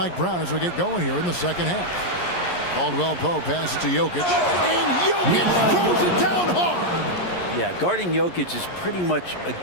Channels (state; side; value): late; right; 11 ms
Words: Brown as we get going here in the second half. Caldwell Pope passes to Jokic. And Jokic throws it down hard. Yeah, guarding Jokic is pretty much a